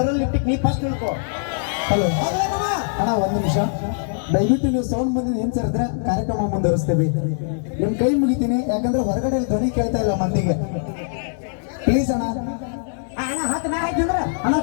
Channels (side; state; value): right; silent; digital silence